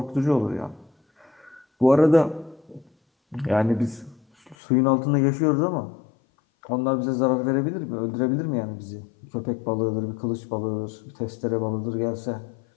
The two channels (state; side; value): drops out; right; at 4.5 s